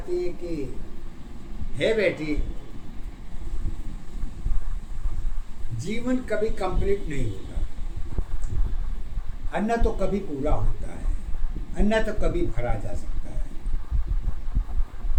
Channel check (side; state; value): both; identical; correlation 1.00